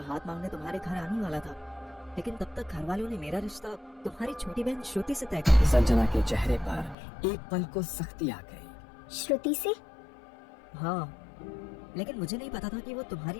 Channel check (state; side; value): drops out; right; at 7.0 s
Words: मांगने तुम्हारे घर आने वाला था, लेकिन तब तक घर वालों ने मेरा रिश्ता तुम्हारी छोटी बहन श्रुति से तय कर दिया। संजना के चेहरे पर एक पल को सख्ती आ गई। श्रुति से? हाँ, लेकिन मुझे नहीं पता था कि वो तुम्हारी